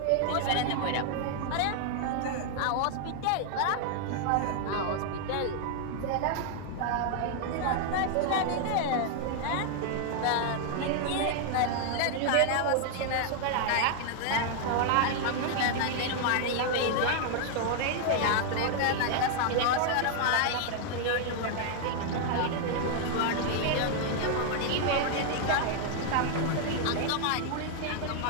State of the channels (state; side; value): different; both; correlation 0.00